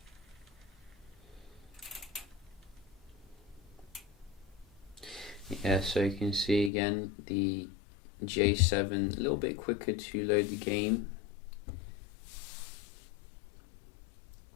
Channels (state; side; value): drops out; right; at 6.7 s